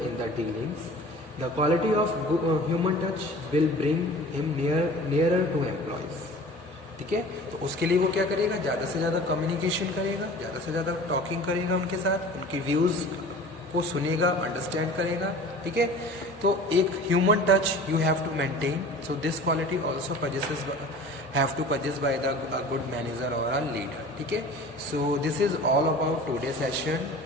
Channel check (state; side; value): normal; both; correlation 0.42